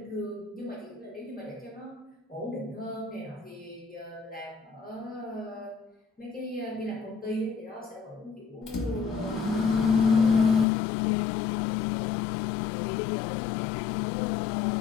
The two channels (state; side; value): drops out; right; at 10.7 s